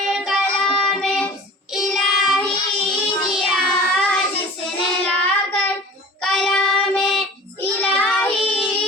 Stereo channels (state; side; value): normal; both; correlation 0.42